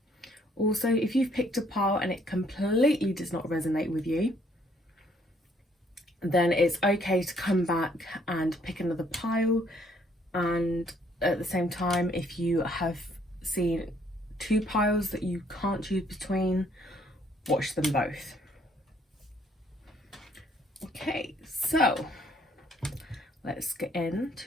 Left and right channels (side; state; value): both; normal; correlation 0.65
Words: Also, if you've picked a pile and it completely does not resonate with you, then it's okay to come back and pick another pile. And at the same time, if you have seen 2 piles that you can't choose between, watch them both. Okay, so let's get